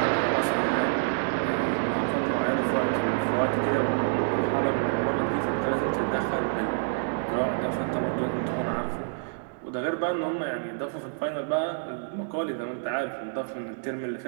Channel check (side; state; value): left; silent; digital silence